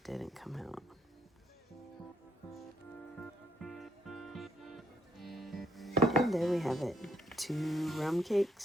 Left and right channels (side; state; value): both; normal; correlation 0.71